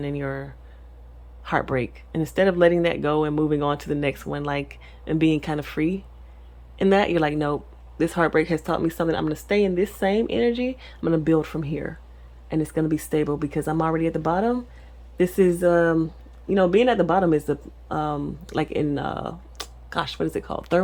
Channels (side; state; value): both; identical; correlation 1.00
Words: in your heartbreak, and instead of letting that go and moving on to the next one, like, and being kind of free in that, you're like, nope, this heartbreak has taught me something. I'm going to stay in this same energy. I'm going to build from here, and it's going to be stable because I'm already at the bottom. This is being at the bottom is the like in what is it called,